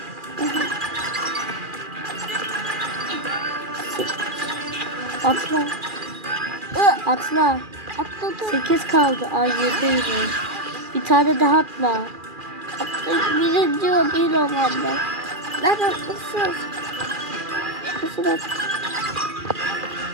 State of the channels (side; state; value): left; late; 2.4 ms